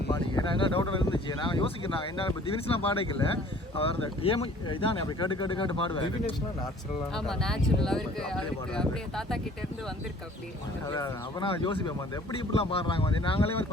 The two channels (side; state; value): both; normal; correlation 0.52